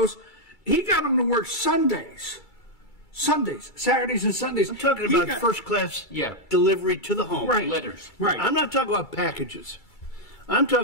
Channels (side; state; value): right; late; 2.3 ms